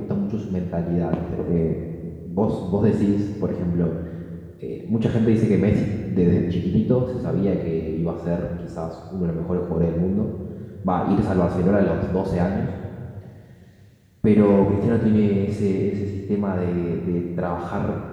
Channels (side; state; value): both; identical; correlation 1.00